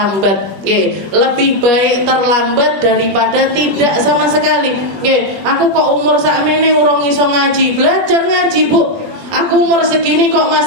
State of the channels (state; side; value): late; left; 21 ms